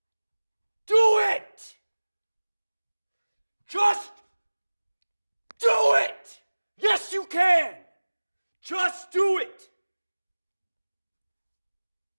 Do it! Just do it! Yes, you can! Just do it!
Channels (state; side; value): inverted; both; correlation -1.00